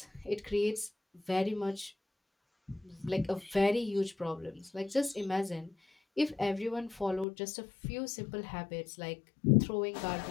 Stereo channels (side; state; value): right; drops out; at 7.2 s